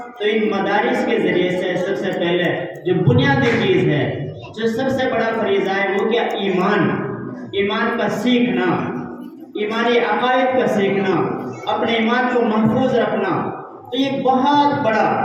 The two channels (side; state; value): both; identical; correlation 1.00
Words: تو ان مدارس کے ذریعے سے سب سے پہلے جو بنیادی چیز ہے، جو سب سے بڑا فریضہ ہے، وہ کیا؟ ایمان، ایمان کا سیکھنا، ایمانی عقائد کا سیکھنا، اپنے ایمان کو محفوظ رکھنا۔ تو یہ بہت بڑا